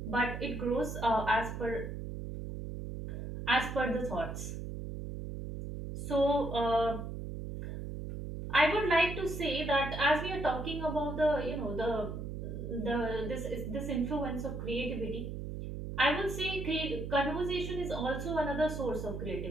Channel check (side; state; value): right; noise; hum, 6 dB below the sound